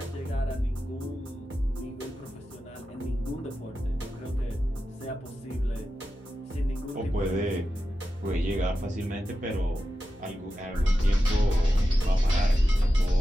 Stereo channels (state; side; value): normal; both; correlation 0.91